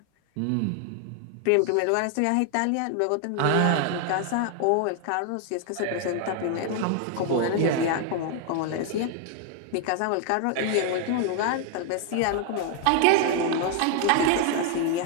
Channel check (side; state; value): both; different; correlation 0.00